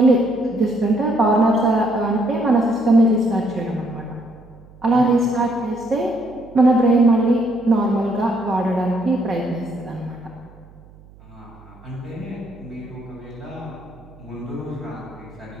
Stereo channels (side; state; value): right; noise; hum, 24 dB below the sound